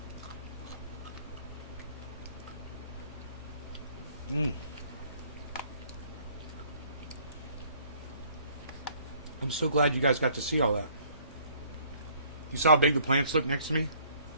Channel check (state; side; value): inverted; both; correlation -0.59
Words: I'm so glad you guys got to see all that. You saw how big the plants look next to me?